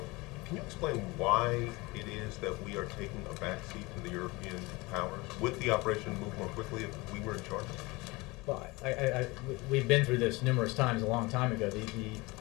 can you explain why it is that we are taking a backseat to the European powers? Would the operation move more quickly if we were in charge? Well, we've been through this numerous times a long time ago.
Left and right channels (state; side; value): quieter; right; 23.6 dB